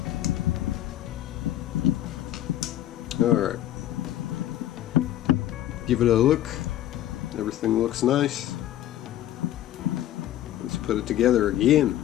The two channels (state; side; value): quieter; right; 13.0 dB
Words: Alright, give it a look. Everything looks nice. Let's put it together again.